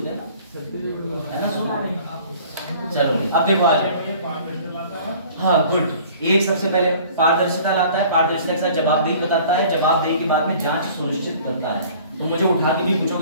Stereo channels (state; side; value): inverted; both; correlation -0.50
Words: हैं ना, है ना। सुना चलो अब देखो आज हाँ गुड। एक सबसे पहले पारदर्शिता लाता है, पारदर्शिता के साथ जवाबदेही बताता है, जवाबदेही के बाद में जांच सुनिश्चित करता है। तो मुझे उठा के भी